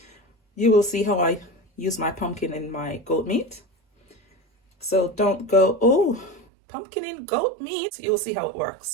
You will see how I use my pumpkin in my goat meat. So don't go, oh, pumpkin in goat meat. You'll see how it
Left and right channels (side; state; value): left; drops out; at 6.5 s